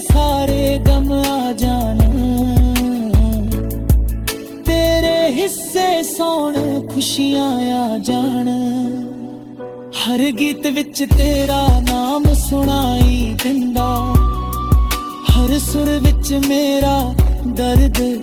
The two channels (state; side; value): identical; both; correlation 1.00